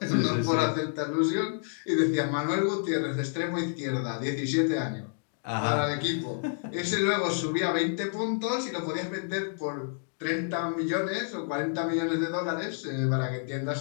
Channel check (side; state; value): right; silent; digital silence